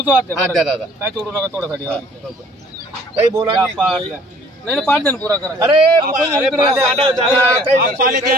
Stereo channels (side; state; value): both; normal; correlation 0.55